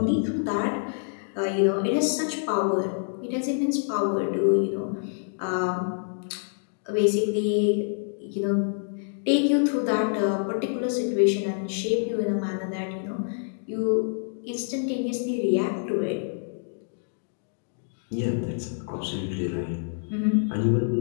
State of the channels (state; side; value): silent; right; digital silence